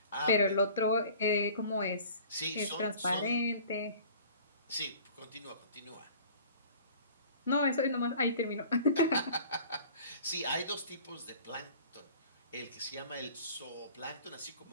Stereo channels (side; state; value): both; inverted; correlation -0.47